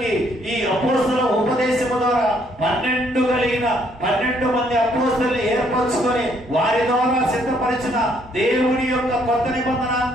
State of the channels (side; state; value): both; normal; correlation 0.68